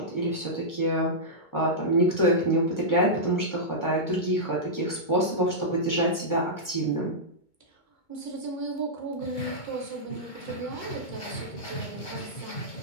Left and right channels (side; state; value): right; late; 2.2 ms